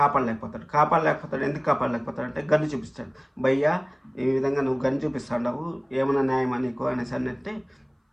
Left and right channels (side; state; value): both; identical; correlation 1.00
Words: ఎందుకు కాపాడలేకపోతాడు అంటే గన్ను చూపిస్తాడు. భయ్యా ఈ విధంగా నువ్వు గన్ను చూపిస్తావు, ఏమైనా న్యాయమా నీకు అనేసి అంటే